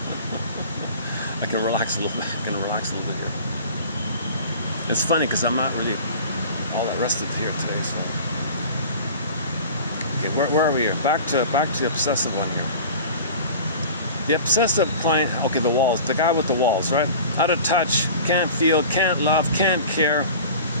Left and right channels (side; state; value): both; inverted; correlation -0.40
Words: I can relax a little bit. Here. It's funny because I'm not really all that rested here today. So, okay, where are we here? Back to the obsessive one here. The obsessive client. Okay, the walls. The guy with the walls, right? Out of touch, can't feel, can't love, can't care.